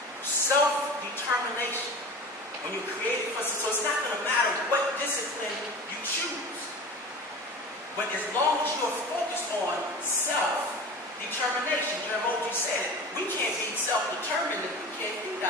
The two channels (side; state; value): both; normal; correlation 0.35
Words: Self-determination. When you're created for, so it's not going to matter what discipline you choose. But as long as you're focused on self-determination, Jeremy said it, we can't be self-determined if we can't feed